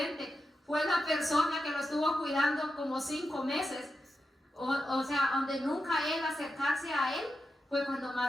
fue la persona que lo estuvo cuidando como 5 meses. O sea, donde nunca él acercarse a él, fue cuando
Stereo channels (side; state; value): both; normal; correlation 0.89